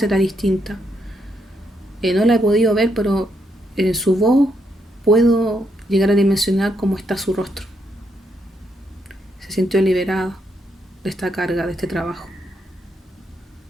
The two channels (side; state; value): both; normal; correlation 0.78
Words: era distinta. No la he podido ver, pero en su voz puedo llegar a dimensionar cómo está su rostro. Se sintió liberada de esta carga, de este trabajo,